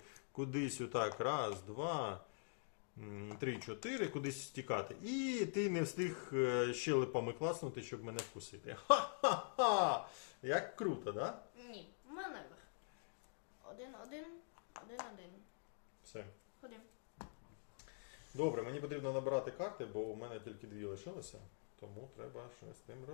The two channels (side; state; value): right; silent; digital silence